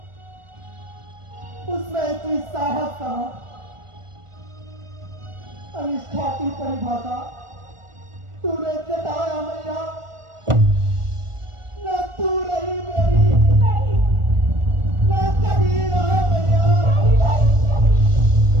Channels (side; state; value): left; late; 1.4 ms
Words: उसमें इतनी साहस कहाँ? अनिष्ठा की परिभाषा तूने जताया मैया, न तू रही मेरी, न कभी रहा मैया।